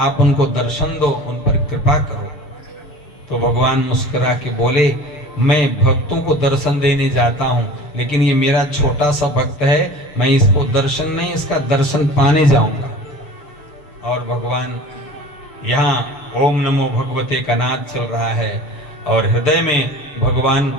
उनको दर्शन दो, उन पर कृपा करो। तो भगवान मुस्कुरा के बोले, मैं भक्तों को दर्शन देने जाता हूं, लेकिन ये मेरा छोटा सा भक्त है, मैं इसको दर्शन नहीं, इसका दर्शन पाने जाऊंगा। और भगवान यहाँ ओम नमो भगवते का नाद चल रहा है, और हृदय में भगवान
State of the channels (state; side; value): late; right; 6.8 ms